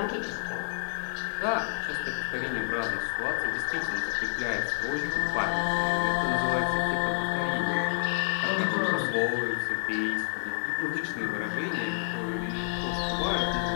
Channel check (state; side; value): silent; right; 59 dB below the other